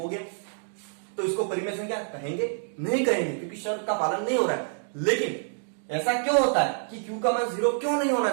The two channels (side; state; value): left; silent; digital silence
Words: गया, तो इसको परिमेय संख्या कहेंगे, नहीं कहेंगे, क्योंकि शर्त का पालन नहीं हो रहा है। लेकिन ऐसा क्यों होता है कि q का मान 0 क्यों नहीं होना